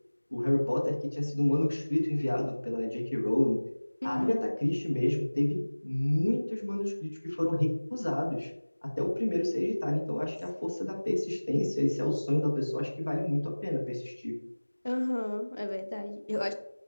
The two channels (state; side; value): inverted; both; correlation -1.00